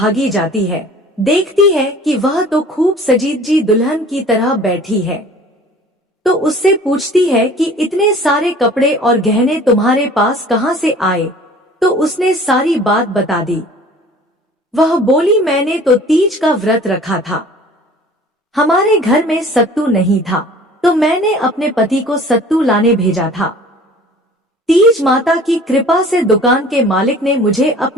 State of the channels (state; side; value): normal; both; correlation 0.47